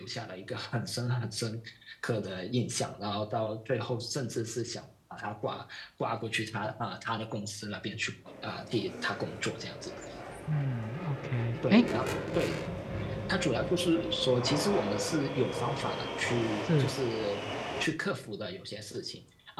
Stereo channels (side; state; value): both; identical; correlation 1.00